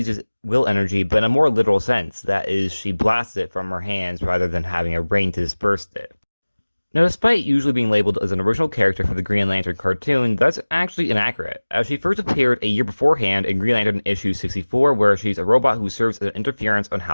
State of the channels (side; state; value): both; inverted; correlation -1.00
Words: will energy, but in a more literal sense. That is, she blasts it from her hands rather than having a brain to disperse it. Now, despite usually being labeled as an original character for the Green Lantern cartoon, that's actually inaccurate, as she first appeared a year beforehand in Green Lantern issue 64, where she's a robot who serves as an interference on